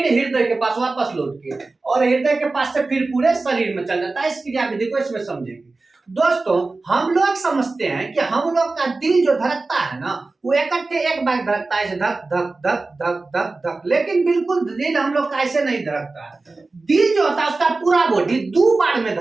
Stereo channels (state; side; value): quieter; left; 3.5 dB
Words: हृदय के पास वापस लौट के, और हृदय के पास से फिर पूरे शरीर में चल जाता है। इस क्रिया विधि को इसमें समझेंगे। दोस्तों हम लोग समझते हैं कि हम लोग का दिल जो धड़कता है ना, वो इकट्ठे एक बार धड़कता है, धक धक धक धक धक धक, लेकिन बिल्कुल दिल हम लोग का ऐसे नहीं धड़कता है। दिल जो होता है उसका पूरा बॉडी 2 बार में